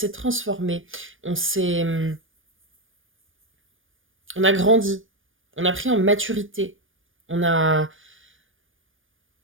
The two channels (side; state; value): left; late; 0.58 ms